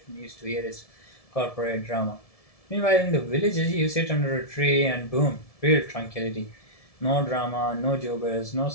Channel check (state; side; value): late; right; 1.7 ms